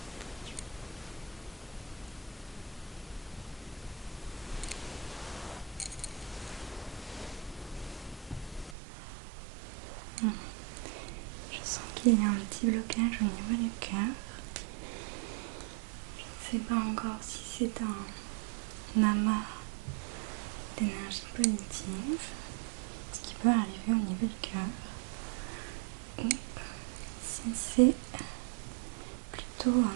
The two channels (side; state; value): left; drops out; at 8.8 s